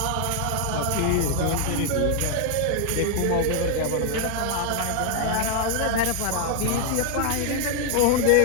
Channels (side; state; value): both; different; correlation 0.00